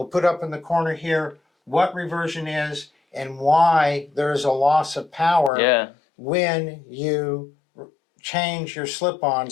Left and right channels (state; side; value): drops out; right; at 5.5 s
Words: put up in the corner here what reversion is and why there is a loss of power when you change your